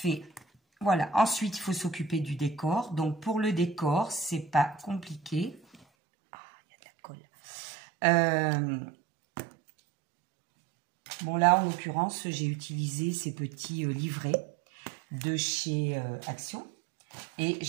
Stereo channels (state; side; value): drops out; left; at 5.8 s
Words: Voilà, ensuite il faut s'occuper du décor. Donc pour le décor, c'est pas compliqué. Ah, il y a de la colle. Bon là, en l'occurrence, j'ai utilisé ces petits livrets de chez Action et